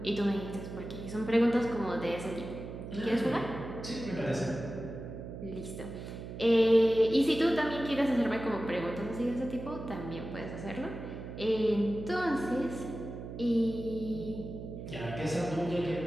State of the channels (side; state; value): right; noise; hum, 9 dB below the sound